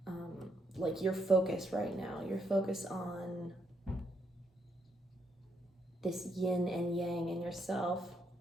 like your focus right now. Your focus on this yin and yang in yourself.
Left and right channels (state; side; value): normal; both; correlation 0.76